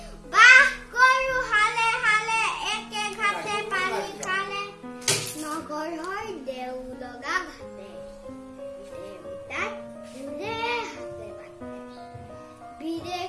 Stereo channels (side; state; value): both; identical; correlation 1.00